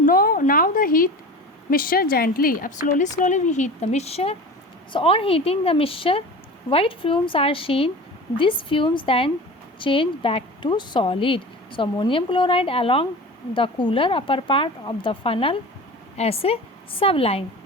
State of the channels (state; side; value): normal; both; correlation 0.35